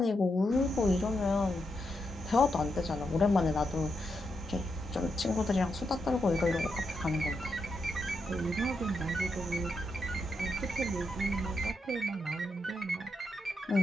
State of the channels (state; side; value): normal; both; correlation 0.83